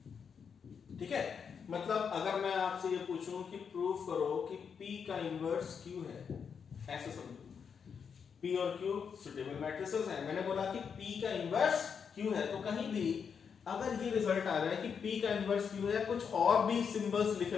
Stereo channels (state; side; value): quieter; right; 6.6 dB